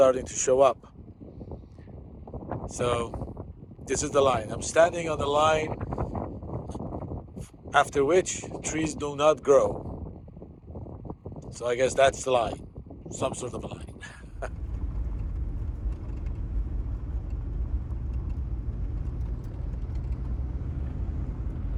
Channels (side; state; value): both; identical; correlation 1.00